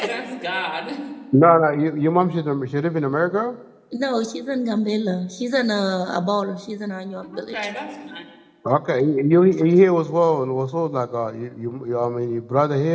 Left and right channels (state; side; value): identical; both; correlation 1.00